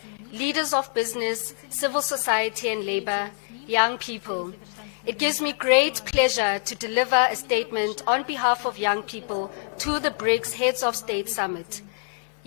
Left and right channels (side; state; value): right; quieter; 38.3 dB